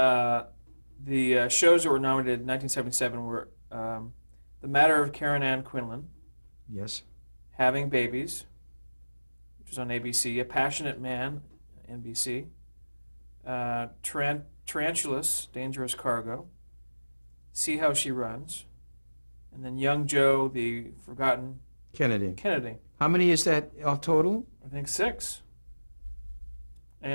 shows that were nominated in 1977 were The Matter of Karen Ann Quinlan, yes, Having Babies, which was on ABC, A Passionate Man, NBC, Tarantulas, Dangerous Cargo, See How She Runs, and then Young Joe, the Forgotten Kennedy. How many is that all total? I think 6.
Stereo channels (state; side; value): inverted; both; correlation -1.00